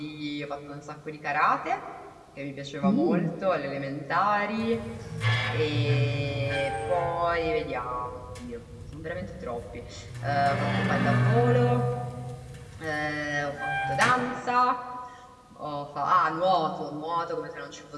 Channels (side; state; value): both; identical; correlation 1.00